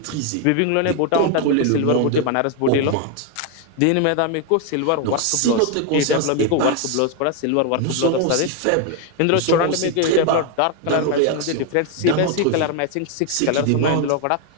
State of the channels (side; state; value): both; different; correlation 0.01